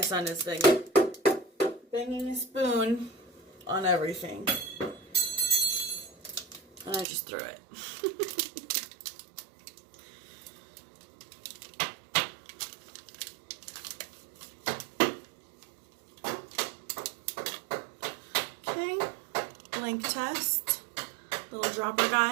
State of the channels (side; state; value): left; drops out; at 7.1 s